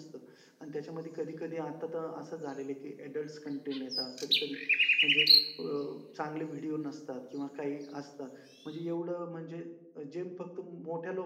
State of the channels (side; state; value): both; identical; correlation 1.00